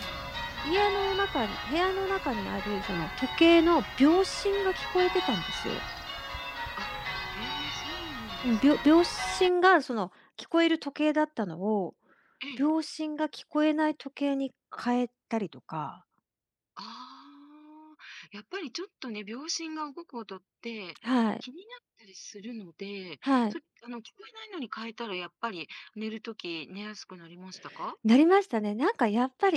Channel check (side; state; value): both; identical; correlation 1.00